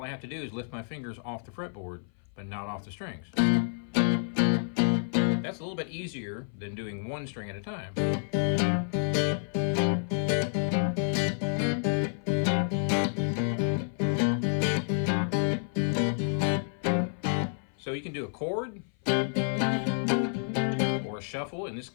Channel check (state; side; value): silent; right; 56 dB below the other